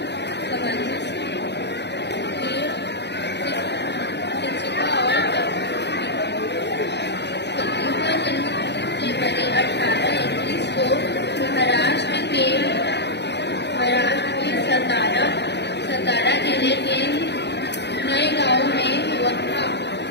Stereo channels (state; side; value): late; right; 0.50 ms